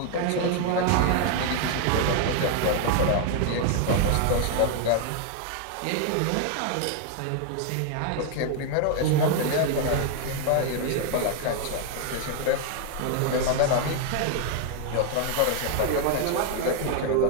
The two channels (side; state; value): both; different; correlation 0.00